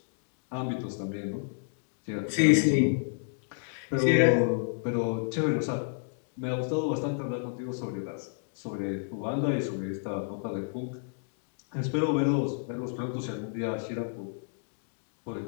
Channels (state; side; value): silent; right; digital silence